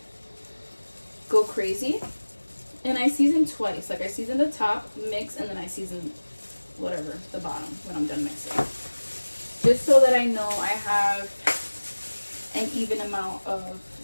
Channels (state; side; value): inverted; both; correlation -1.00